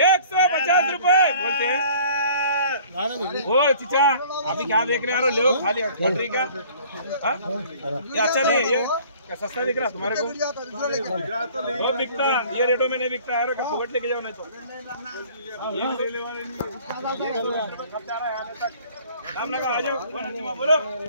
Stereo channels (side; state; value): both; inverted; correlation -0.51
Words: 150 रुपए बोलते हैं ओ चिचा अभी क्या देख रहे हो ले खाली फटरी का ये अच्छा नहीं है ये क्या सस्ता दिख रहा तुम्हारे को वो बिकता ये रेटों में नहीं बिकता है फुकट लेके जाओ नहीं तो ये ले वाले नाम लगा आ जाओ बोलो